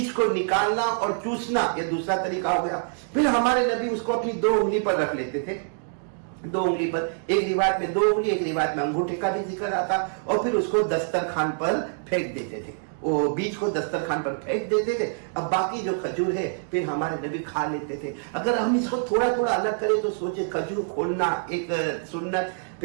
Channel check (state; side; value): silent; left; digital silence